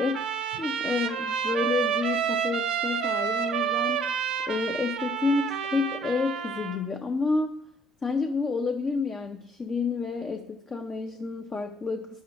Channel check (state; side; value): normal; both; correlation 0.61